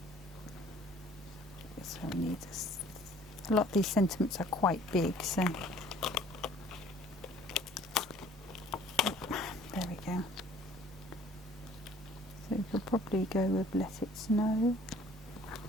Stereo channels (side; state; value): both; normal; correlation 0.54